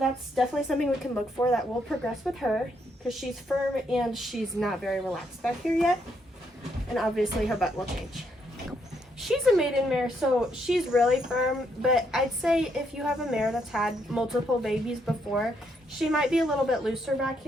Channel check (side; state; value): both; normal; correlation 0.75